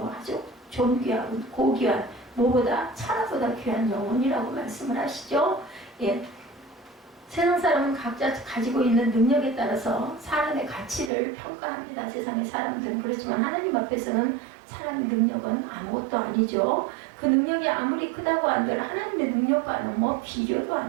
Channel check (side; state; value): left; drops out; at 11.1 s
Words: 아주 존귀하고 고귀한 무보다 천하보다 귀한 영혼이라고 말씀을 하시죠. 세상 사람은 각자 가지고 있는 능력에 따라서 사람의 가치를 평가합니다. 세상의 사람들은. 그렇지만 하나님 앞에서는 사람의 능력은 아무것도 아니죠. 그 능력이 아무리 크다고 한들 하나님의 능력과는 뭐 비교도